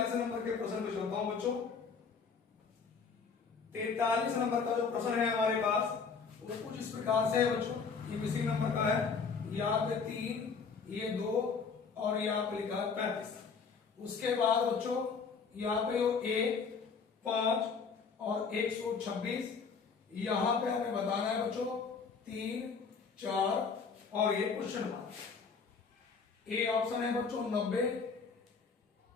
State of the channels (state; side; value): quieter; right; 5.4 dB